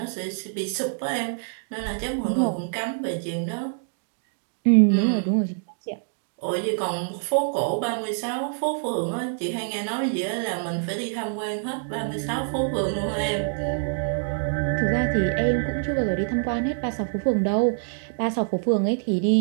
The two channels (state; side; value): silent; left; digital silence